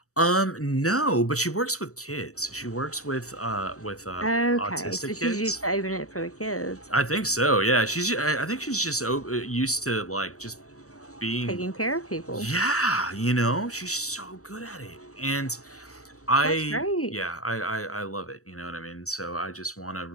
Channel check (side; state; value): right; late; 0.65 ms